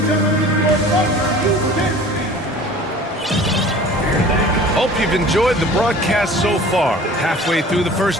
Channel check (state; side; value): normal; both; correlation 0.44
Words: Hope you've enjoyed the broadcast so far. Halfway through the